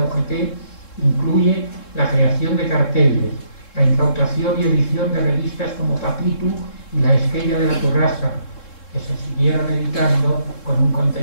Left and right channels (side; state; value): right; late; 3.7 ms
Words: UGT, incluye la creación de carteles, la incautación y edición de revistas como Papitu y La Esquella de la Torrasa, que se siguieron editando con un